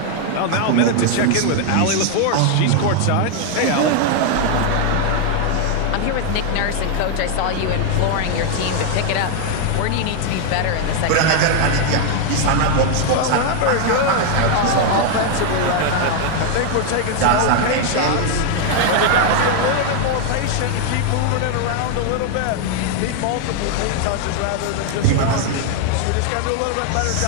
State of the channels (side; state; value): both; different; correlation 0.00